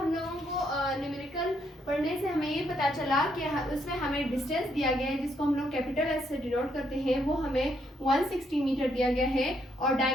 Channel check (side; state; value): both; normal; correlation 0.74